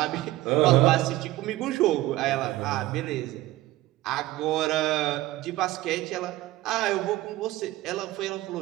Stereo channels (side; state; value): left; quieter; 17.0 dB